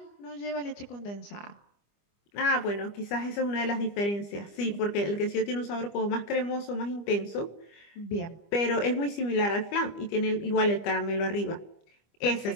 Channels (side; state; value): right; late; 25 ms